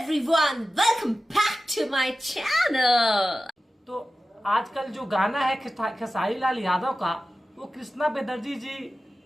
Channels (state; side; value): normal; both; correlation 0.94